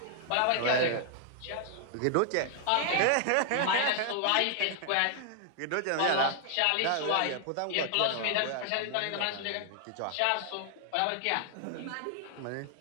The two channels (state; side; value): different; both; correlation 0.00